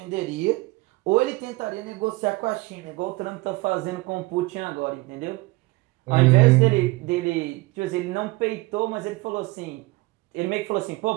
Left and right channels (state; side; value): quieter; left; 22.4 dB